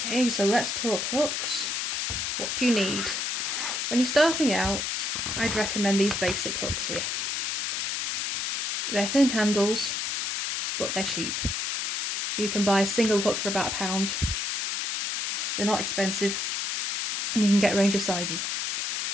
so let's talk hooks. What do you need? When you're starting out, I'd recommend these basic hooks here. They're thin handles, but they're cheap. You can buy a single hook for about £1. They're not expensive, and you can get a range of sizes.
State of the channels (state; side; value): noise; left; hiss, 1 dB below the sound